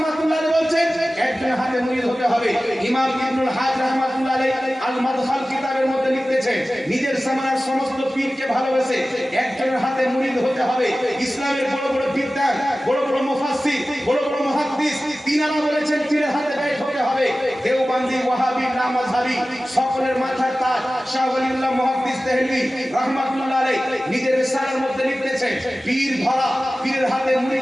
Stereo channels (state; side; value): normal; both; correlation 0.96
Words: আলাইহি বলছেন একজনের হাতে মুরিদ হতে হবে। ইমাম ইবনুল হাজ রাহমাতুল্লাহ আলাইহি আল মাদখাল কিতাবের মধ্যে লিখতেছেন, নিজের জামানার সমস্ত পীরকে ভালোবেসে একজনের হাতে মুরিদ হতে হবে। ইসলামের বড় বড় বিদ্বান, বড় বড় মুফাসসির, বড় বড় মুহাদ্দিস, তিনারা বলেছেন পীরের হাতে বাইত হতে হবে। দেওবন্দি, ওয়াহাবি, লামাযহাবি সকলের মাথার তাজ শাহ ওয়ালিউল্লাহ মুহাদ্দিস দেহলভী রাহমাতুল্লাহ আলাইহি নিজের রিসালার মধ্যে লিখতেছেন, পীর ধরা, পীরের হাতে